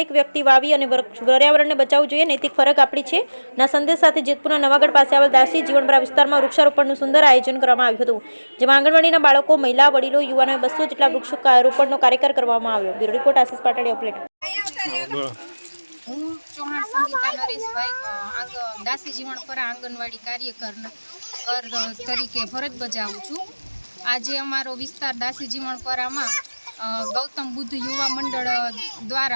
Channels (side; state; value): both; inverted; correlation -1.00